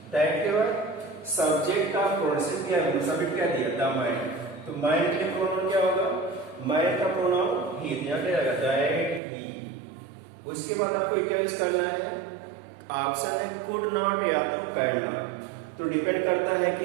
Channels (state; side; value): drops out; left; at 9.2 s